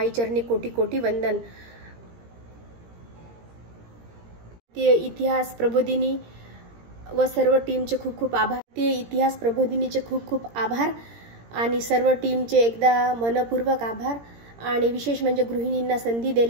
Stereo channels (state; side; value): late; left; 17 ms